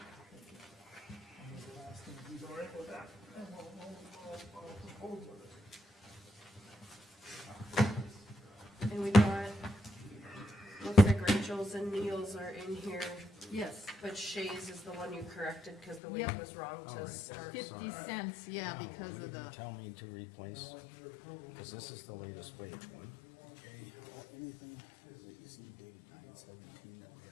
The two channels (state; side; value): drops out; right; at 16.0 s